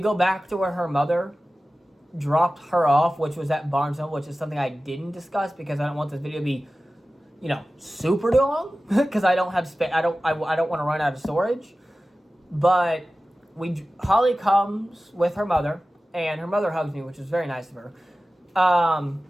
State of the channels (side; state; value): both; normal; correlation 0.96